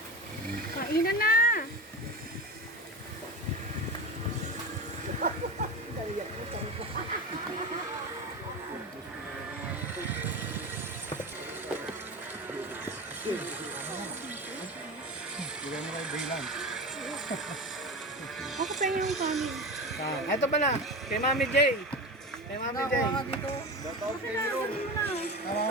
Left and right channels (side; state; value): both; normal; correlation 0.26